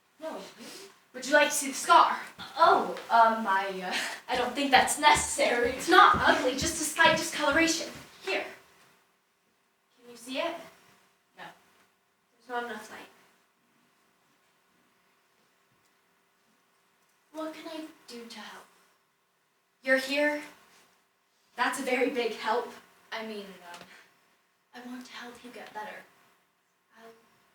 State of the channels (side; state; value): both; identical; correlation 1.00